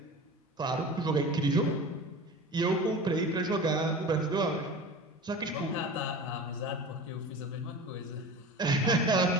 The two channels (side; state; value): both; normal; correlation 0.35